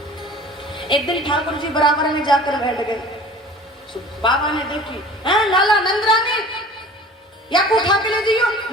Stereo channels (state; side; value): normal; both; correlation 0.44